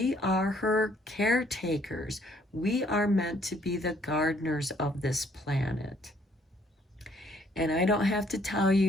are her caretakers. We are meant to be the gardeners of this planet. And I don't have to tell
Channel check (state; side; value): normal; both; correlation 0.64